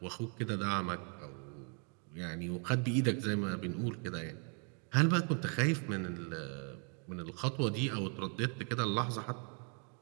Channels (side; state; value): left; quieter; 39.2 dB